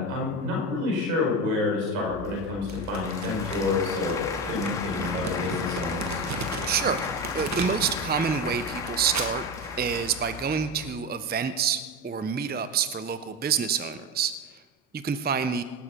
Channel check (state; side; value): normal; both; correlation 0.21